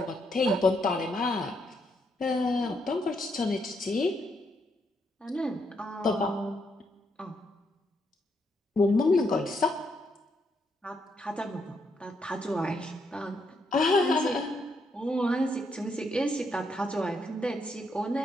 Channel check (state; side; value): normal; both; correlation 0.77